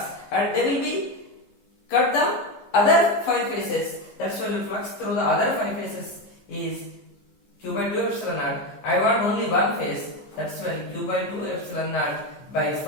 and they will be cut the other 5 faces. That's why the flux through the other 5 faces is Q by 2 epsilon naught. I want only one face, that's why Q by 2 epsilon naught by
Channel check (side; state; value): right; late; 15 ms